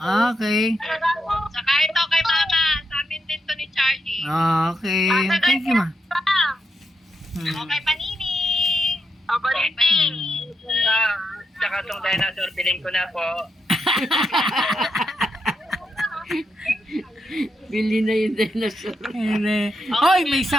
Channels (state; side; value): normal; both; correlation 0.83